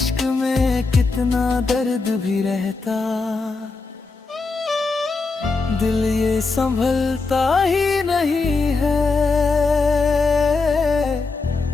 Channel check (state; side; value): quieter; right; 4.0 dB